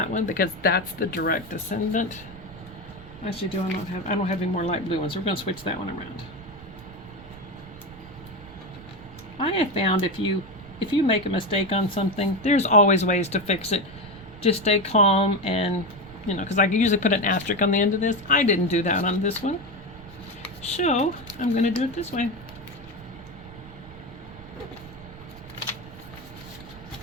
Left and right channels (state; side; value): noise; right; rumble, 18 dB below the sound